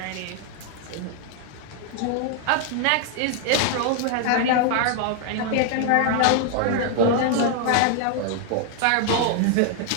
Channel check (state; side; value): different; both; correlation 0.00